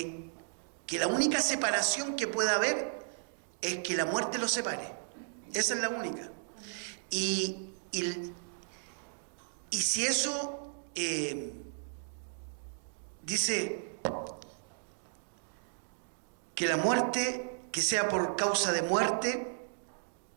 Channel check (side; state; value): left; silent; digital silence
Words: la única separación que pueda haber es que la muerte los separe. Esa es la única. Y si eso dice que la muerte, que sea por causa de muerte,